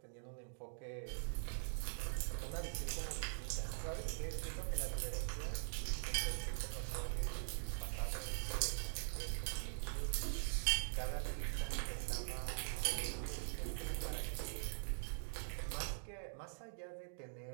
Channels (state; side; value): silent; left; digital silence